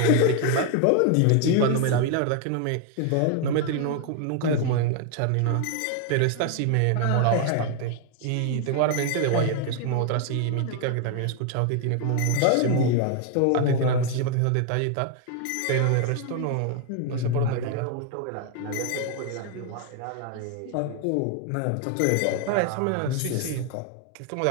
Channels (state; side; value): different; both; correlation 0.01